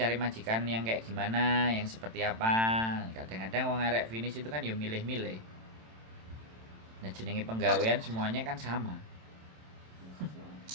majikan yang kayak gimana, yang seperti apa. Kadang-kadang wong arek finish itu kan ya milih-milih. Nah, jenenge penggawean semuanya kan sama.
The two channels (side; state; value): left; late; 27 ms